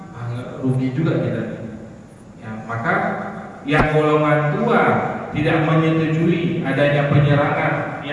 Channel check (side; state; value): both; identical; correlation 1.00